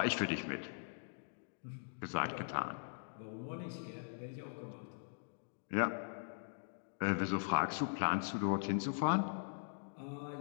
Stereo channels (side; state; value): right; silent; digital silence